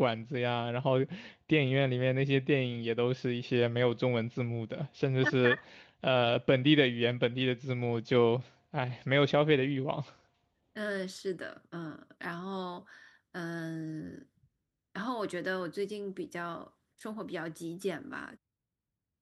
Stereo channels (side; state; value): both; identical; correlation 1.00